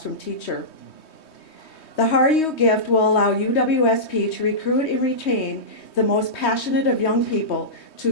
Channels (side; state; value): right; late; 3.2 ms